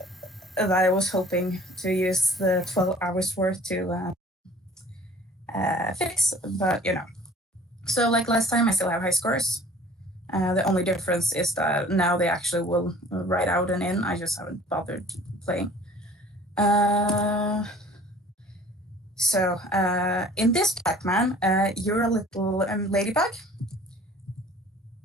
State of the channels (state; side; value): normal; both; correlation 0.50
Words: I was hoping to use the 12 hours worth to fix, but you know. So like last time, I still have high scores. The only difference is that now they actually will write out and in. I just haven't bothered playing. In this Pac-Man, you're a little ladybug.